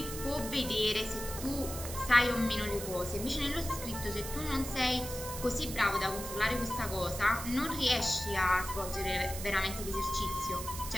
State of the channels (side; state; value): right; noise; hiss, 8 dB below the sound